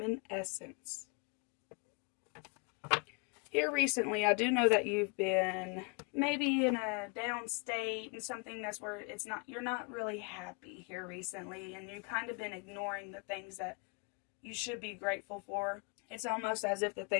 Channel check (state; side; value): quieter; right; 34.1 dB